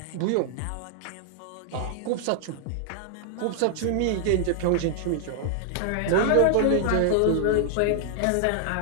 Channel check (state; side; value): different; both; correlation -0.01